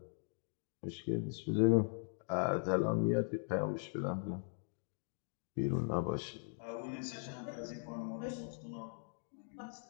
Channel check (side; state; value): right; silent; digital silence